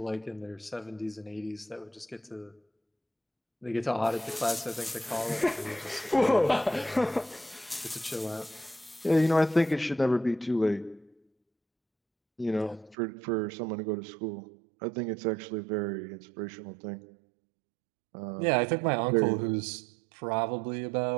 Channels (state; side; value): drops out; left; at 13.0 s